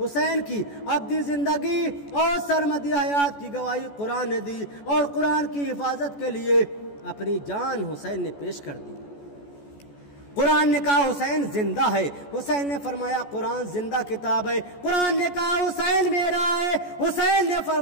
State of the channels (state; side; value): late; right; 14 ms